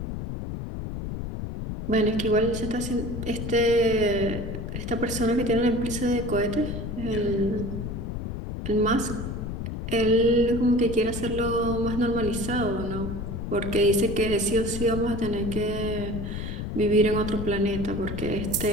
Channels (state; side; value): noise; left; rumble, 5 dB below the sound